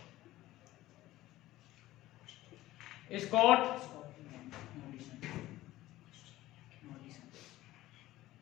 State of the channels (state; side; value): quieter; right; 16.1 dB